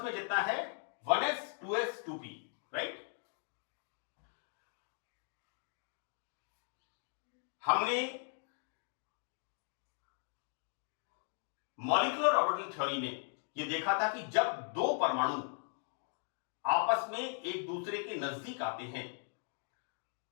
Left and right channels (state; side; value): silent; right; 52 dB below the other